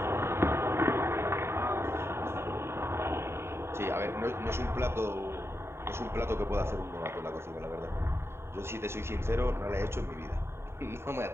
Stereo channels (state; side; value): late; left; 0.12 ms